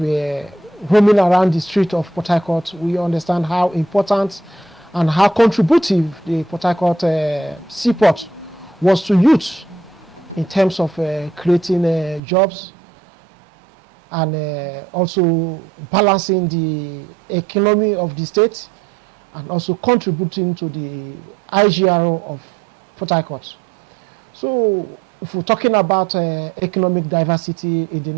roaming around the street of Port Harcourt, we understand how important and how contributive the Port Harcourt seaport was to youth in terms of creating jobs and also balancing the economy of the state and also contributing to the IGRO of Port Harcourt. So if we're talking about economic diversity in the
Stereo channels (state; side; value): drops out; left; at 12.2 s